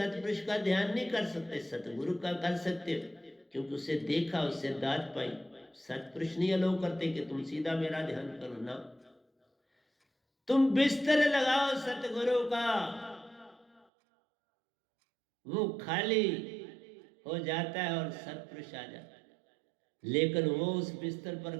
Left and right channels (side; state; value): left; drops out; at 13.9 s